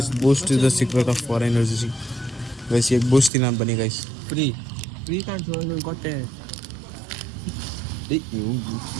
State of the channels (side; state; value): left; drops out; at 3.3 s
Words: Boost is the secret of for energy guys. ಈಗ ಬೂಸ್ಟ್ ತಿನ್ನ ಬನ್ನಿ ಗೈಸ್. ಫ್ರೀ ಕಾಣಿಸು ಕೊಟ್ಟೆ.